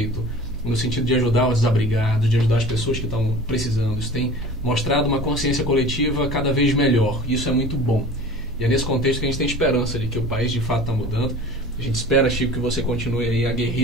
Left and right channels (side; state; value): both; normal; correlation 0.39